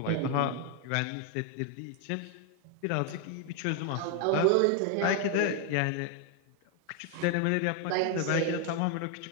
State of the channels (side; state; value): both; different; correlation 0.01